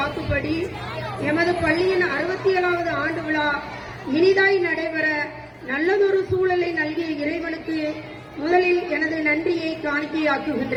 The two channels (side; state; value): both; identical; correlation 1.00